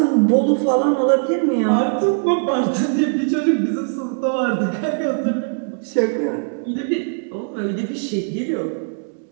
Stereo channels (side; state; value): left; silent; 62 dB below the other